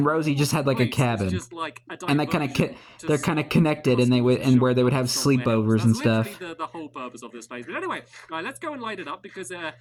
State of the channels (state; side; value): identical; both; correlation 1.00